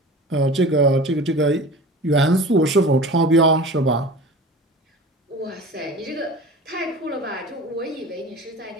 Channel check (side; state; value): both; normal; correlation 0.37